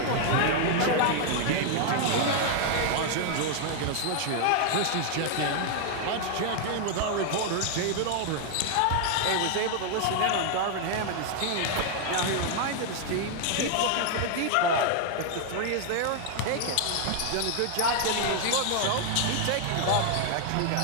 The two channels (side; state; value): both; different; correlation 0.00